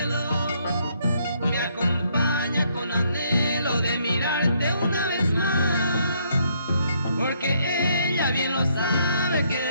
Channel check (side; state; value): both; inverted; correlation -0.70